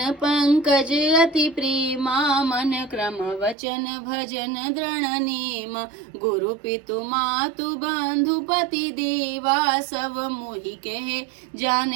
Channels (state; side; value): drops out; left; at 3.6 s